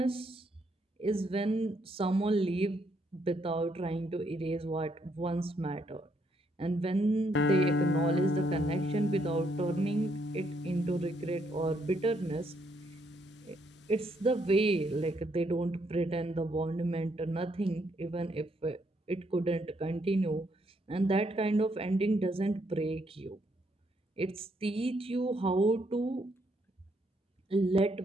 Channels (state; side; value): normal; both; correlation 0.73